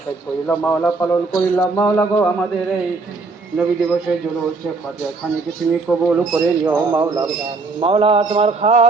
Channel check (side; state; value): left; quieter; 3.9 dB